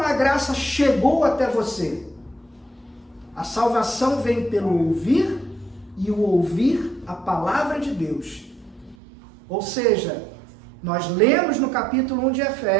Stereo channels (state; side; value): drops out; left; at 9.0 s